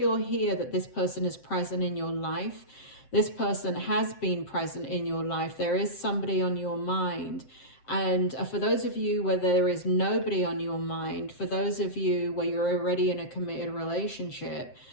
here that this person is present in your life. This person has been present in your life. There is somebody on your mind. And for those of you where there is nobody on your mind, for those of you where you're already in a committed relationship,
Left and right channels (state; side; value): late; right; 7.7 ms